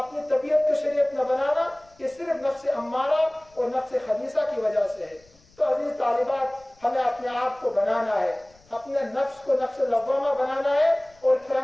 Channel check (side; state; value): left; noise; rumble, 30 dB below the sound